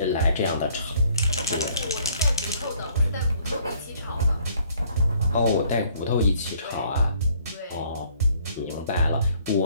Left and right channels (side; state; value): both; inverted; correlation -0.61